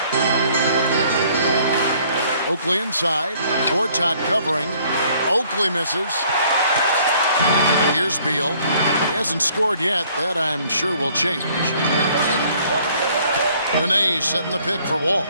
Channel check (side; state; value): both; inverted; correlation -0.60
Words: Oakley inside. Gortat covering. Oakley misses. Here's Beal. He hasn't scored yet. That, I'm sure, will change. Nene setting the pick for Wall.